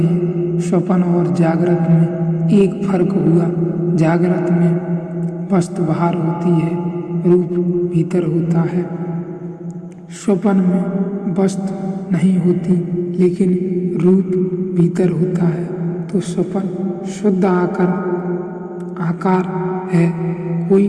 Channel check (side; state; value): both; identical; correlation 1.00